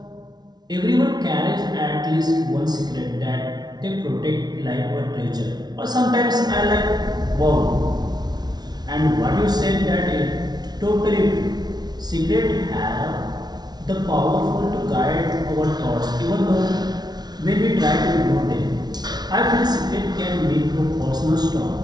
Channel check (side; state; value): left; late; 0.19 ms